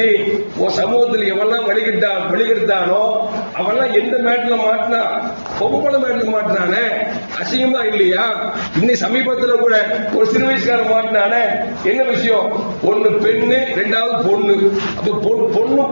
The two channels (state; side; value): inverted; both; correlation -1.00